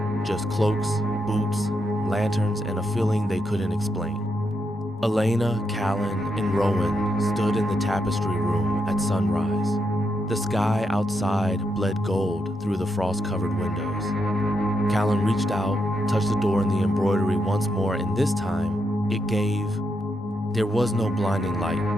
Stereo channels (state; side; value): normal; both; correlation 0.81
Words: just cloaks, boots, lanterns, and a feeling they couldn't explain. Elena, Callan, and Rowan stood in the tapestry room at sunrise. The sky outside bled gold through the frost-covered windows. Callan reached out, touched the door and the embroidery once more, and this time, there was no blinding light,